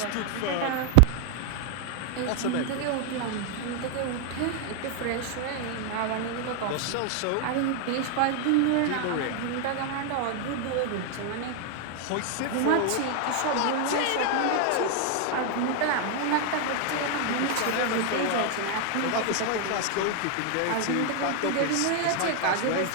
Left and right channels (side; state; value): both; different; correlation 0.00